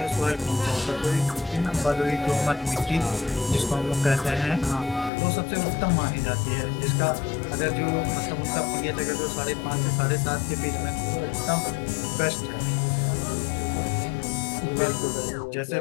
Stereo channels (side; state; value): right; drops out; at 5.1 s